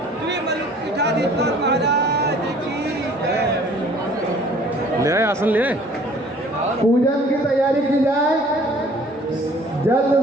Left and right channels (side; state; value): both; normal; correlation 0.53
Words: श्री मलुक पीठाधीश्वर महाराज की जय। ले आए आसन, ले आए। पूजन की तैयारी की जाए जल्द